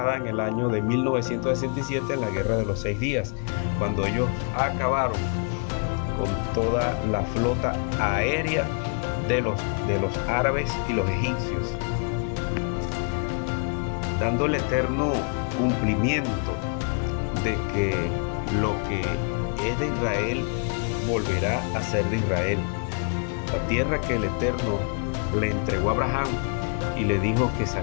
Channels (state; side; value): quieter; right; 39.7 dB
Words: en el año de 1967 en la guerra de los 6 días, cuando ellos acabaron con toda la flota aérea de los árabes y los egipcios, dando el eterno cumplimiento de que lo que es de Israel volverá a ser de Israel. La tierra que el Eterno le entregó a Abraham y le dijo que